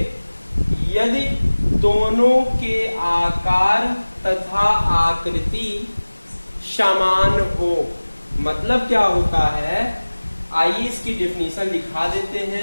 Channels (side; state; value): both; inverted; correlation -1.00